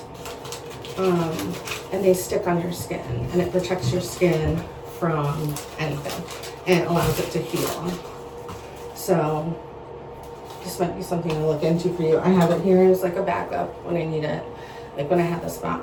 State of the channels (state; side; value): identical; both; correlation 1.00